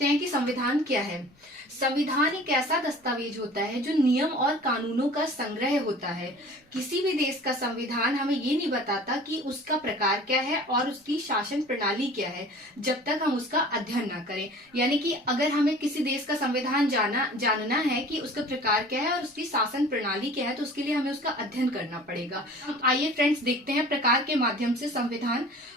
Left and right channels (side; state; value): both; normal; correlation 0.44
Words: हैं कि संविधान क्या है। संविधान एक ऐसा दस्तावेज होता है जो नियम और कानूनों का संग्रह होता है। किसी भी देश का संविधान हमें ये नहीं बताता कि उसका प्रकार क्या है और उसकी शासन प्रणाली क्या है, जब तक हम उसका अध्ययन ना करें। यानी कि अगर हमें किसी देश का संविधान जानना है कि उसका प्रकार क्या है और उसकी शासन प्रणाली क्या है, तो उसके लिए हमें उसका अध्ययन करना पड़ेगा। आइए फ्रेंड्स, देखते हैं प्रकार के माध्यम से संविधान